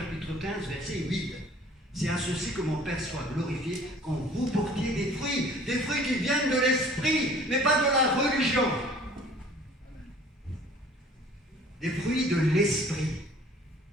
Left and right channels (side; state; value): both; normal; correlation 0.51